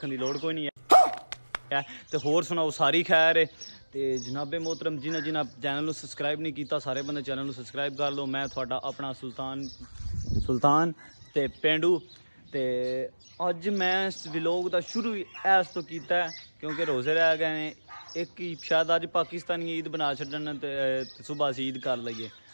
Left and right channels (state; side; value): inverted; both; correlation -1.00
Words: दी लोड़ कोई नहीं है। तो होर सुनाओ सारी खैर है। तो जनाबे मोहतरम जिन्हें जिन्हें चैनल को सबसक्राइब नहीं किया, सारे बंदे चैनल को सबसक्राइब कर लो। मैं थोड़ा अपना सुल्तान ते पेंडू। तो अज मैं इस व्लॉग का शुरू इस तो किया क्योंकि रोज़े रह गए हैं। एक ही शायद अज पाकिस्तानी ईद बना छड्डन तो सुबह असीं ईद कर लईए,